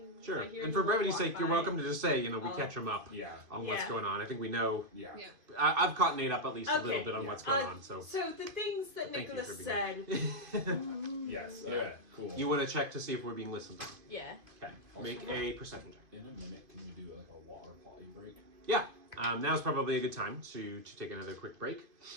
Sure. I hear And for them brevity's walk sake, you're by. welcome to just say, we catch him up Yeah. on what's Yeah. going on. I think we know. Yeah. Yeah. I've caught Nate up at least a Okay. little bit on Yeah. what's going on. So So the things that Thank you Nicholas for said. being Yes. Yeah. Okay. Cool. You want to check to see if we're being listened to. Yeah. Okay. Make a perception check. In a minute, can we do like a water potty break? yeah, now's probably a good time to take another quick break.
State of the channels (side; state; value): left; late; 2.5 ms